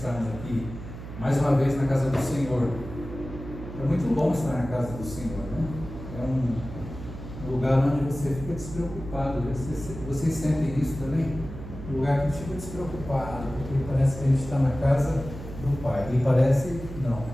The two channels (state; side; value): noise; right; hum, 11 dB below the sound